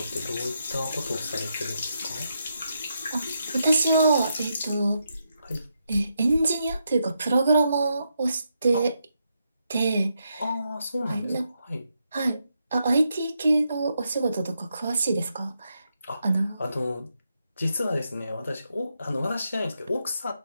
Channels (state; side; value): inverted; both; correlation -0.82